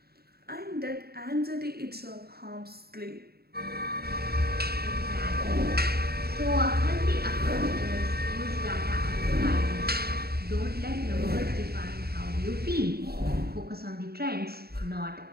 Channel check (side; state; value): left; late; 0.46 ms